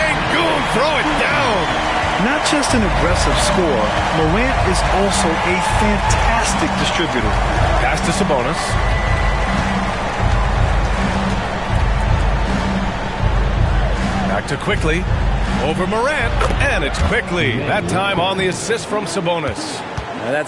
throw it down. Not just an aggressive scorer, Morant is also a fantastic distributor. Pass to Sabonis. Back to Quickly. Over Morant. And it's Quickly. That time on the assist from Sabonis. Now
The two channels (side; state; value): both; identical; correlation 1.00